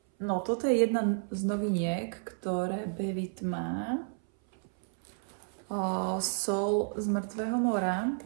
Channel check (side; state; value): left; silent; 57 dB below the other